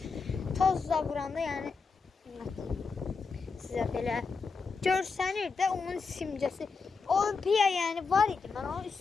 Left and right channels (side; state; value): right; quieter; 4.8 dB